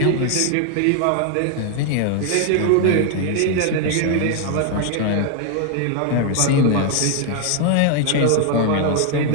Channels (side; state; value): both; different; correlation 0.00